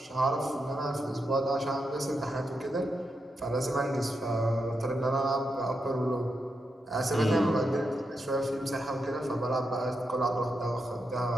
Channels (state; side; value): normal; both; correlation 0.85